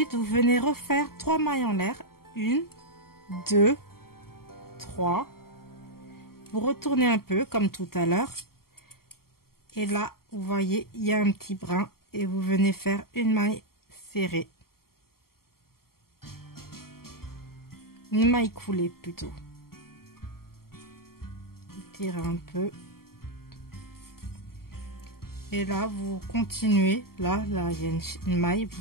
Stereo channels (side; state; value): right; late; 0.93 ms